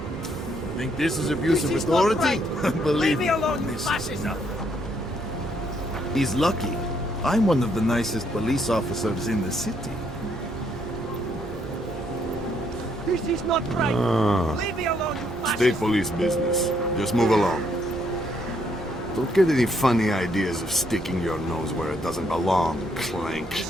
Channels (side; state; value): both; normal; correlation 0.71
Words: Think this is abuse of authority? Believe me, he's lucky. I'm one of the nicest police officers in the city. This is not right. Leave me alone, you State police business. Just move along. Don't get any funny ideas of sticking your nose where it doesn't belong, Clank.